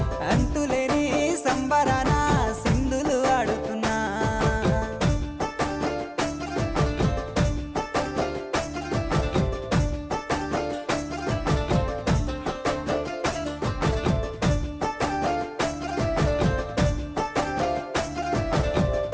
అంతులేని సంబరాన సింధులు ఆడుతున్నా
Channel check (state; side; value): identical; both; correlation 1.00